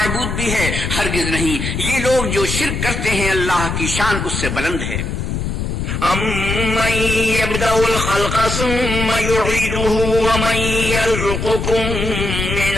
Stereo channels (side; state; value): left; noise; rumble, 3 dB below the sound